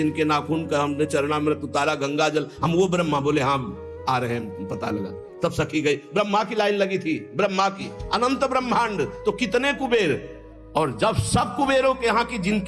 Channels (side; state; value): both; identical; correlation 1.00